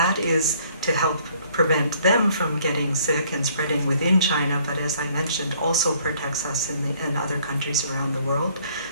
is to help prevent them from getting sick and spreading within China, but as I mentioned, also protects us in other countries around the world.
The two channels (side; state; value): both; inverted; correlation -0.62